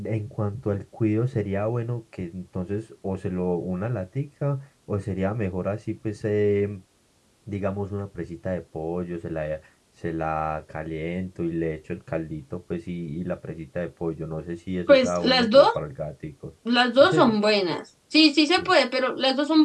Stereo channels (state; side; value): identical; both; correlation 1.00